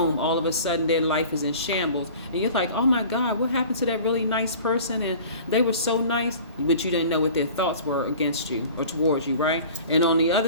all of a sudden their life is in shambles. And you're like, oh my God, what happened to that really nice person? And they were so nice, but you didn't know what their thoughts were against you or towards you, right? And on the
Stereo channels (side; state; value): both; inverted; correlation -0.43